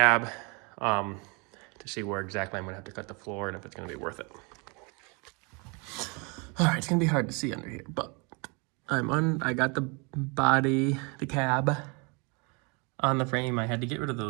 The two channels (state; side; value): quieter; left; 31.0 dB